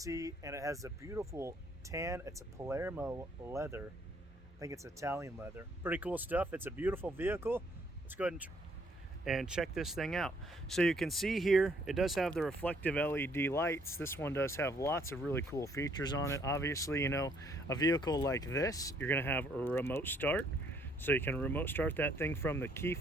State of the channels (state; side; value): normal; both; correlation 0.66